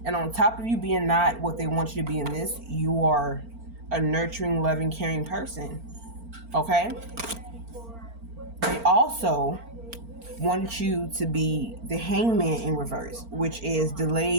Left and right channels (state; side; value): late; left; 4.4 ms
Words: And on top of you being not what they want you to be in this, you are a nurturing, loving, caring person, okay? They also want you to be the Hangman in reverse, which is